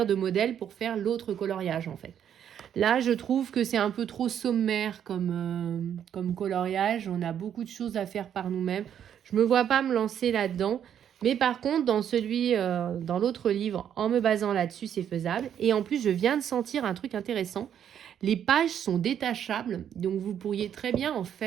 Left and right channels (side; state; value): left; quieter; 9.3 dB